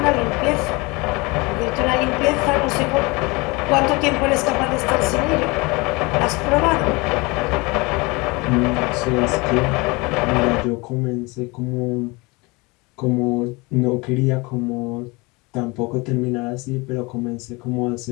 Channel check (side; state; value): right; quieter; 25.7 dB